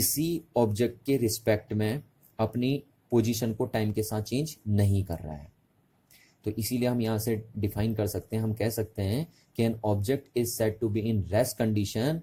ऑब्जेक्ट के रिस्पेक्ट में अपनी पोजीशन को टाइम के साथ चेंज नहीं कर रहा है। तो इसीलिए हम यहाँ से डिफाइन कर सकते हैं, हम कह सकते हैं कि an object is said to be in rest condition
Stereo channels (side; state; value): both; identical; correlation 1.00